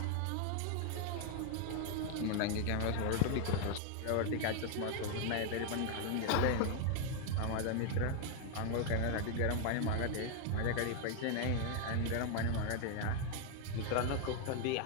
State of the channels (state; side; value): different; both; correlation 0.00